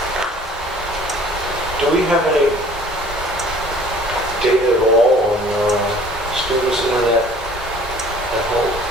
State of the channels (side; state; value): both; normal; correlation 0.52